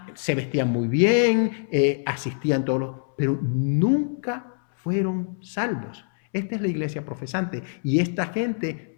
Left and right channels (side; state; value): right; silent; 62 dB below the other